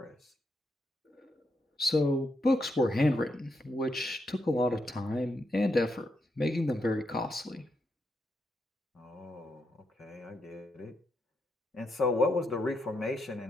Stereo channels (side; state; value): both; normal; correlation 0.82